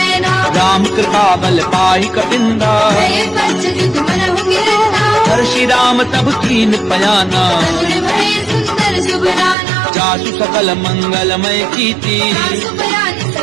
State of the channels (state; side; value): drops out; left; at 9.6 s